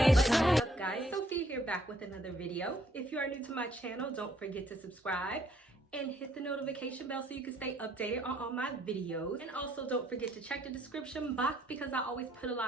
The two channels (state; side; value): normal; both; correlation 0.66